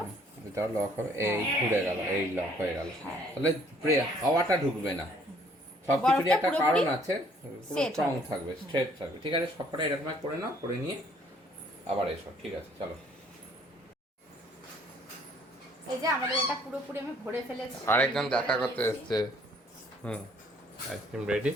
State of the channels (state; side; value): normal; both; correlation 0.61